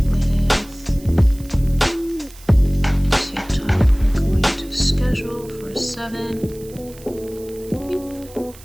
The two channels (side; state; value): right; noise; hiss, 21 dB below the sound